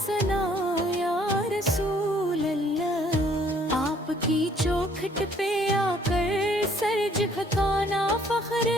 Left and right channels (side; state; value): both; normal; correlation 0.62